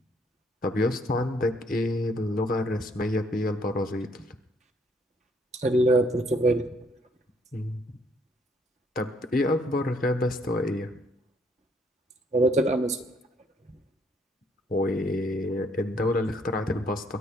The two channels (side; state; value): both; normal; correlation 0.67